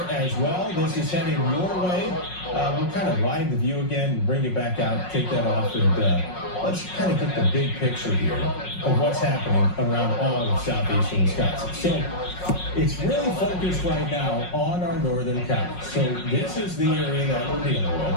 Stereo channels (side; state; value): right; late; 5.5 ms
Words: as well. This is heading your way. We'll kind of widen the view again and bring it back out, take that off, and let's kind of get the big picture here of what's happening around all of southeastern Wisconsin. So it's really focused right now on our northern counties. So this is the area that we're dealing